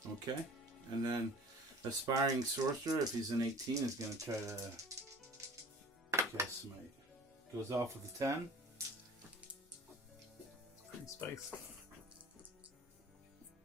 Okay. And then Aspiring Sorcerer, if he's an 18, is going to try to cast Smite. Goes off with a 10. Pretty spicy.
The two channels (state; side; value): normal; both; correlation 0.45